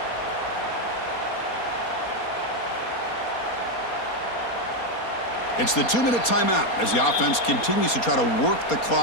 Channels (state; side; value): late; right; 4.3 ms